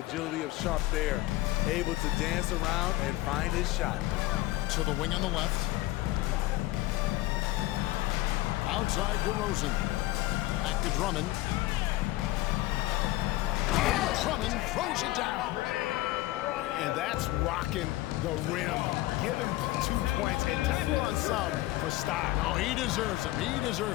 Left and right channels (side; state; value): right; quieter; 17.7 dB